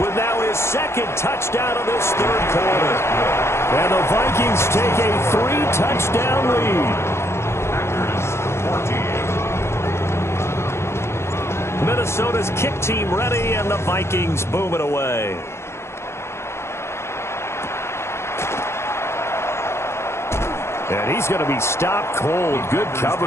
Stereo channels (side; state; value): right; late; 0.13 ms